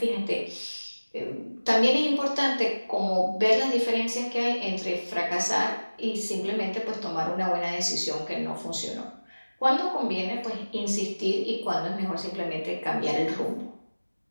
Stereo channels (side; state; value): both; inverted; correlation -1.00